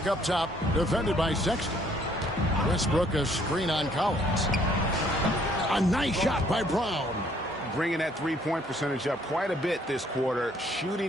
up top, defended by Sexton. Westbrook a screen on Collins. A nice shot by Brown. Bringing that three-point percentage up quite a bit this quarter,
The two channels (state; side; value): normal; both; correlation 0.64